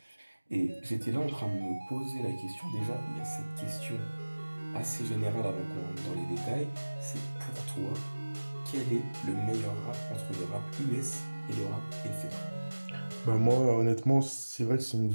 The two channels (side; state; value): both; inverted; correlation -1.00